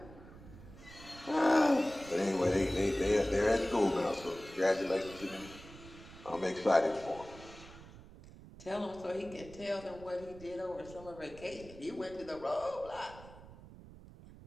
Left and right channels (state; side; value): noise; right; rumble, 18 dB below the sound